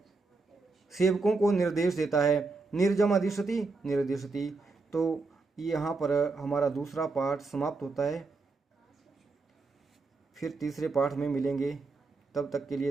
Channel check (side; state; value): left; quieter; 3.8 dB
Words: सेवकों को निर्देश देता है, निर्जम अधिशति निर्देशति। तो यहाँ पर हमारा दूसरा पाठ समाप्त होता है। फिर तीसरे पाठ में मिलेंगे, तब तक के